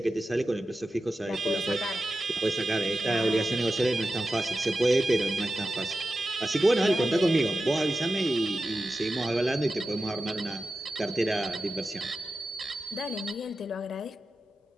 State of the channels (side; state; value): both; normal; correlation 0.93